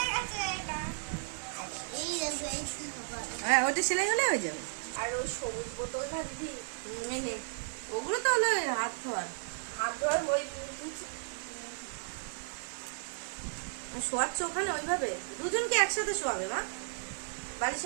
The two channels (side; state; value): left; silent; 55 dB below the other